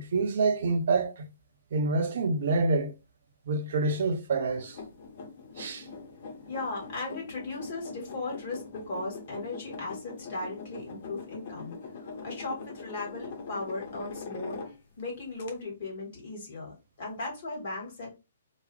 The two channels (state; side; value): inverted; both; correlation -0.59